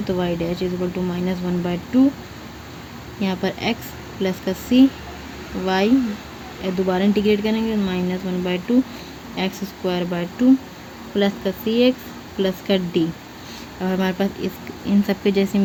तो y dash is equal to minus 1/2, यहाँ पर x प्लस का c y दोबारा इंटीग्रेट करेंगे minus 1/2 x square by 2 plus का cx प्लस का d। अब हमारे पास इन सब के जैसी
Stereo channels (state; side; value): identical; both; correlation 1.00